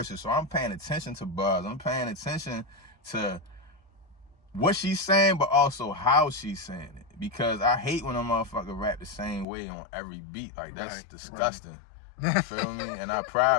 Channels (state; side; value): drops out; right; at 9.5 s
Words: so I'm paying attention to bars. I'm paying attention to what she's saying, but also how she's saying it. Because I hate when a motherfucker rap the same way on every beat. Like, that's disgusting. You feel me? And I